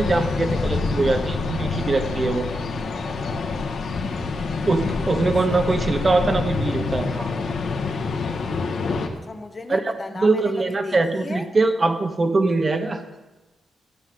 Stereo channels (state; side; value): normal; both; correlation 0.86